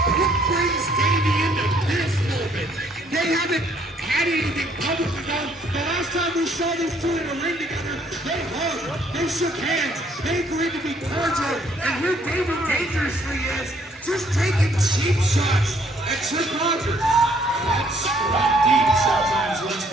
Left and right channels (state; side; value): normal; both; correlation 0.65